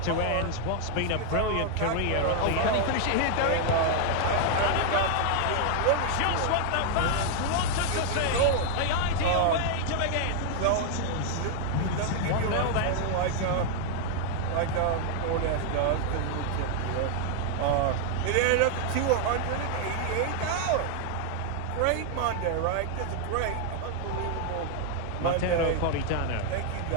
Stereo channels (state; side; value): different; both; correlation 0.00